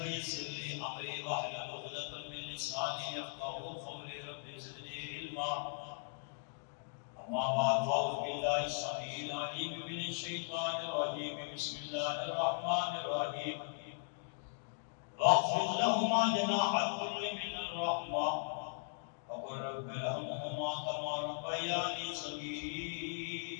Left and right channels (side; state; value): right; silent; digital silence